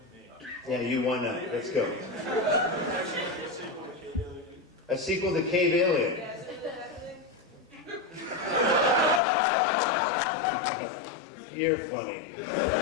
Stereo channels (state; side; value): drops out; right; at 9.2 s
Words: Yeah, you won that. Let's go. A sequel to Cave Alien. You're funny.